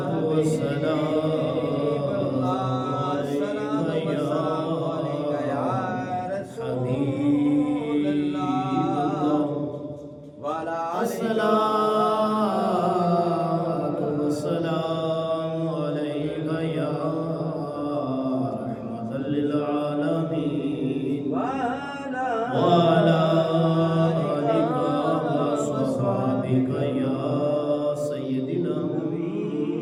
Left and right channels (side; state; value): both; identical; correlation 1.00